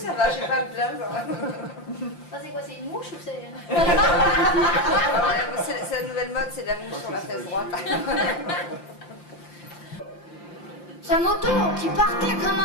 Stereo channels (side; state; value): right; late; 5.8 ms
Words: Ça, c'est quoi? C'est une mouche ou c'est... C'est la nouvelle mode, c'est la mouche sur la fesse droite. Sa moto qui partait comme